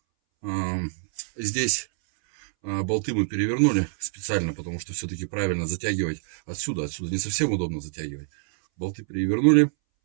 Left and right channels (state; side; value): silent; left; 61 dB below the other